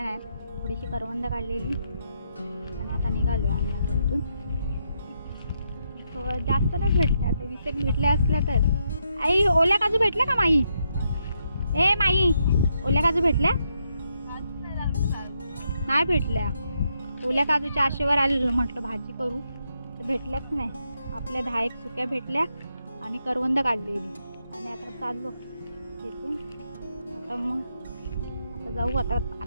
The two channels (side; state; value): both; inverted; correlation -0.79